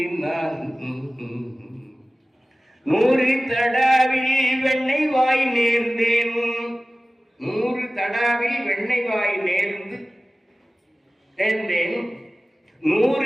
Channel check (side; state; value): both; normal; correlation 0.97